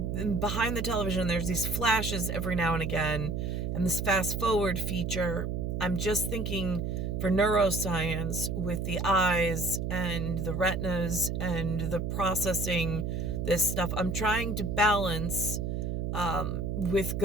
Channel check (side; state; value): right; noise; hum, 1 dB below the sound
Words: behind the television, there's these flashes every now and again. And this fast forward feature, I'm just thinking for neuroscience with the eyes and the retinas and the processing this stuff, I'm trying to balance with